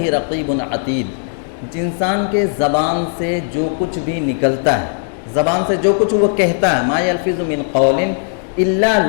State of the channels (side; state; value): right; silent; 66 dB below the other